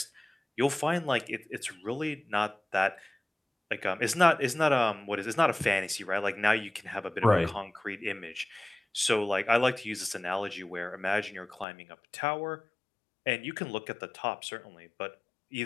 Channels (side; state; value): right; drops out; at 11.7 s